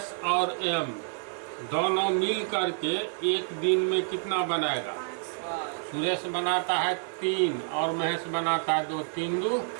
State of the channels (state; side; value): silent; left; digital silence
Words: और एम दोनों मिल करके एक दिन में कितना बनाएगा? सुरेश बनाता है 3 और महेश बनाता है 2, 3 2,